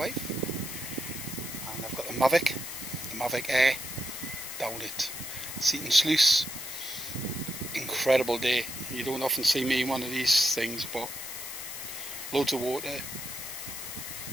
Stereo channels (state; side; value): noise; left; hiss, 8 dB below the sound